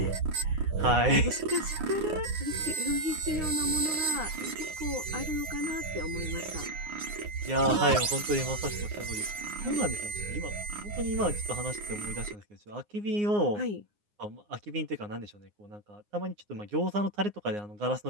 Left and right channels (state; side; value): late; left; 9.7 ms